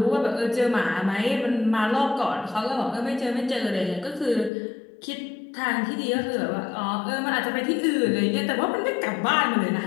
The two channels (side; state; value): right; drops out; at 4.5 s